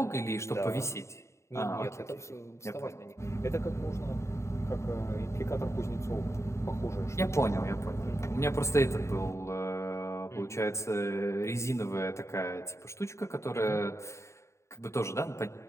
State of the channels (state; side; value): late; right; 0.14 ms